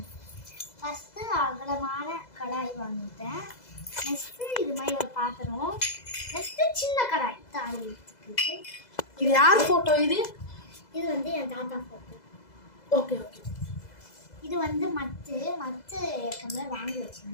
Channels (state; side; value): late; right; 2.0 ms